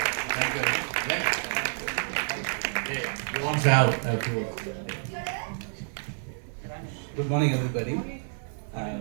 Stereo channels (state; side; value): silent; left; digital silence